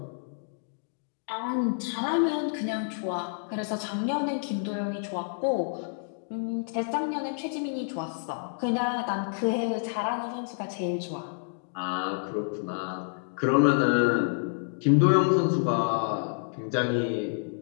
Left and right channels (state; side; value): silent; right; digital silence